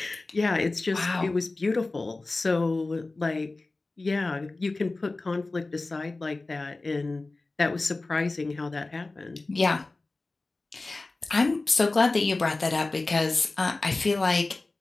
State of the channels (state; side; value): quieter; right; 3.3 dB